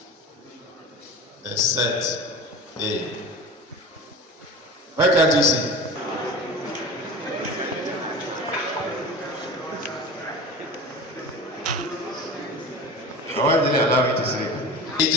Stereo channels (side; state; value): both; normal; correlation 0.34